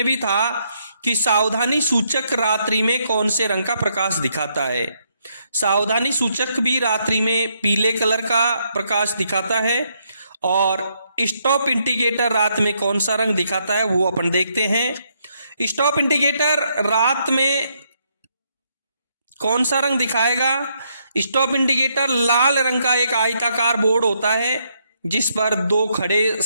भी था कि सावधानी सूचक रात्रि में कौन से रंग का प्रकाश दिखाता है? सावधानी सूचक भी रात्रि में पीले कलर का प्रकाश दिखाता है। और स्टॉप इंडिकेटर रात में कौन सा रंग दिखाता है वो अपन देखते हैं। स्टॉप इंडिकेटर रात में कौन सा रंग दिखाएगा? स्टॉप इंडिकेटर लाल रंग का एक आयताकार बोर्ड होता है जिस पर 2 खड़े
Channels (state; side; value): inverted; both; correlation -0.75